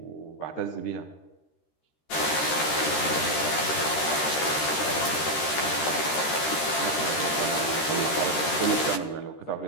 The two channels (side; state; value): right; late; 13 ms